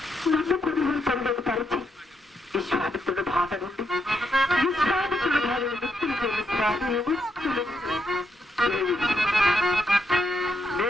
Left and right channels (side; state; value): both; normal; correlation 0.79